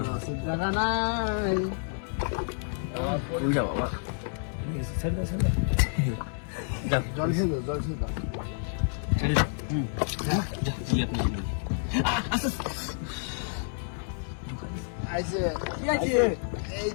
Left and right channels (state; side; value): silent; right; 59 dB below the other